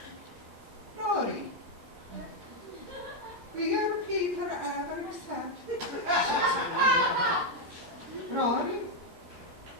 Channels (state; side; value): late; left; 13 ms